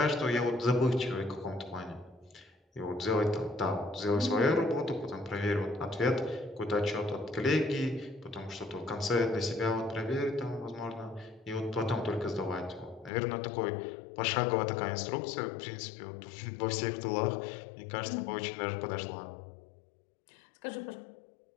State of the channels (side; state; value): right; drops out; at 13.1 s